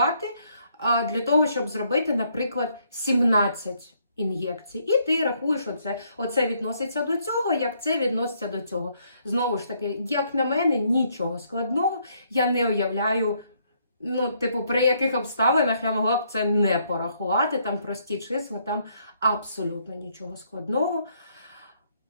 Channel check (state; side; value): inverted; both; correlation -0.71